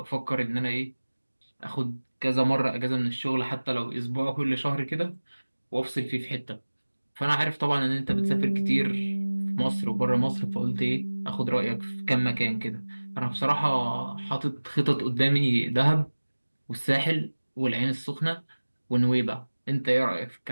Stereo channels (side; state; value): both; inverted; correlation -1.00